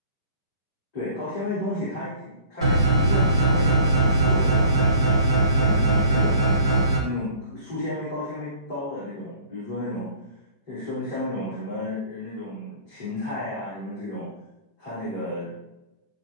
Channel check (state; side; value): inverted; both; correlation -0.50